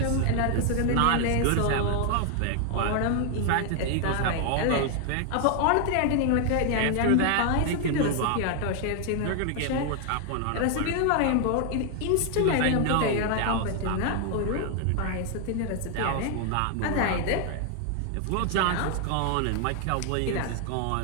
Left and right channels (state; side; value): different; both; correlation 0.00